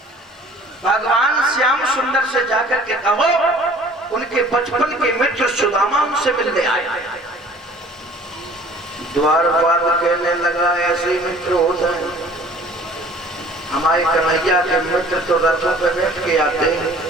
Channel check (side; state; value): both; normal; correlation 0.50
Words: भगवान श्याम सुंदर से जाकर के कहो उनके बचपन के मित्र सुदामा उनसे मिलने आए। द्वारपाल कहने लगा, ऐसे मित्र होते हैं। हमारे कन्हैया के मित्र तो रथों पे बैठ के आते हैं,